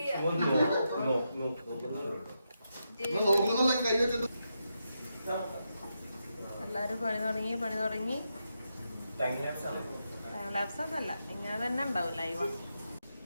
എല്ലാരും പണി തുടങ്ങി. ടൈം ലാപ്സ് ഒന്നല്ല, ഇങ്ങനെ തന്നെ ഉണ്ടാവും ലൈവ്.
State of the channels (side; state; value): both; inverted; correlation -0.85